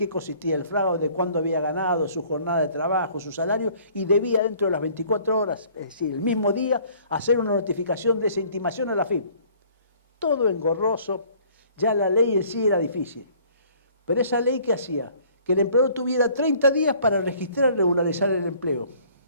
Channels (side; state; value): both; inverted; correlation -0.56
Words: consistía el fraude, cuándo había ganado, su jornada de trabajo, su salario, y debía dentro de las 24 horas, es decir, el mismo día, hacer una notificación de esa intimación a la FIP. Todo engorroso, ya la ley en sí era difícil. Pero esa ley, ¿qué hacía? Que el empleador tuviera 30 días para registrar y regularizar el empleo.